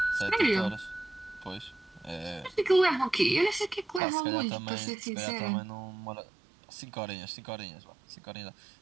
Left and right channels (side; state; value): left; drops out; at 4.0 s